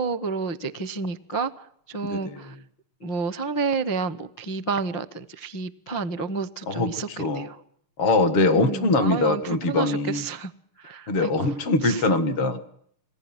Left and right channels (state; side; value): late; right; 6.5 ms